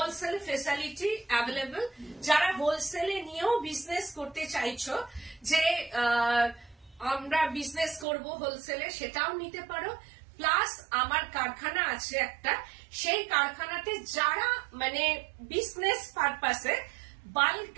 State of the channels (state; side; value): drops out; left; at 8.1 s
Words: facility available. যারা হোলসেলে নিয়েও বিজনেস করতে চাইছো, যে আমরা বিজনেস করব হোলসেলে, সেটাও নিতে পারো। প্লাস আমার কারখানা আছে একটা, সেই কারখানাতে যারা মানে বিজনেস পারপাসে